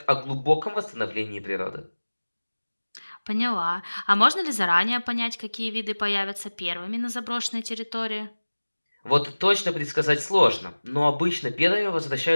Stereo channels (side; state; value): both; inverted; correlation -1.00